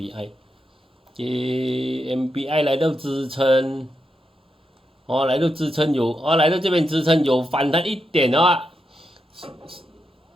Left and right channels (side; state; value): both; normal; correlation 0.85